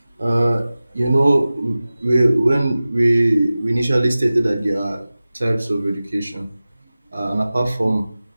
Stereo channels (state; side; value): inverted; both; correlation -0.97